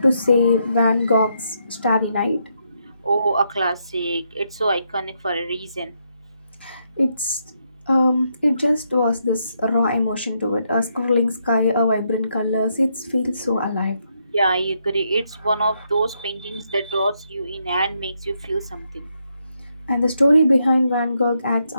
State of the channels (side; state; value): both; inverted; correlation -0.78